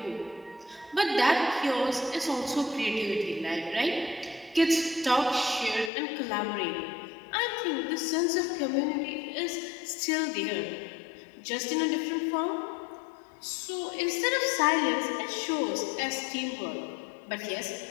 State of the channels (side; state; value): right; drops out; at 5.9 s